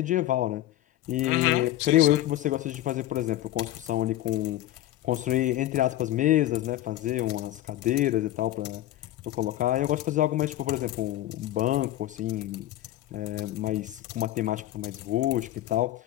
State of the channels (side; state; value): right; quieter; 14.3 dB